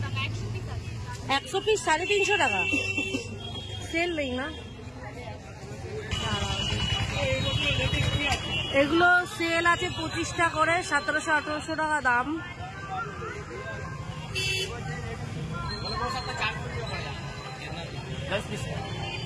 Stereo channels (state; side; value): identical; both; correlation 1.00